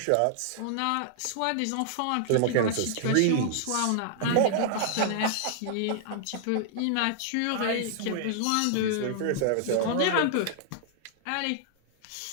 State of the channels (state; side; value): different; both; correlation -0.01